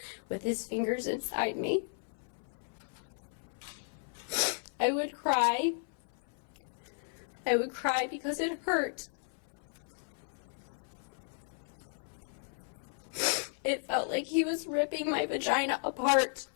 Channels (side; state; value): right; silent; 55 dB below the other